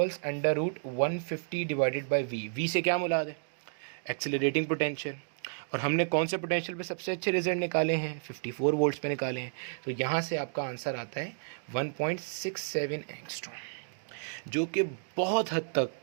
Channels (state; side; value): silent; left; digital silence